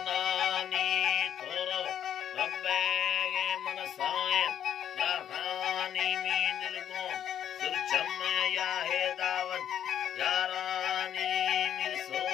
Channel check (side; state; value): right; quieter; 9.8 dB